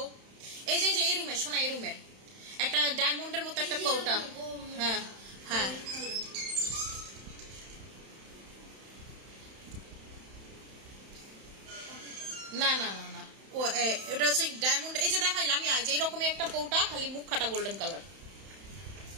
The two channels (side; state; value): left; late; 31 ms